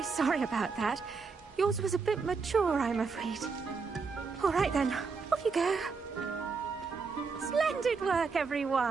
sorry about that. Yours was a bit mature, I'm afraid. All right then, off you go. Splendid work,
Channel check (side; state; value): left; quieter; 4.9 dB